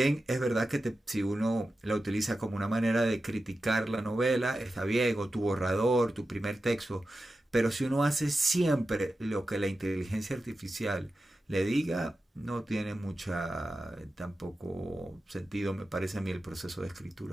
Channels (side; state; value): both; normal; correlation 0.92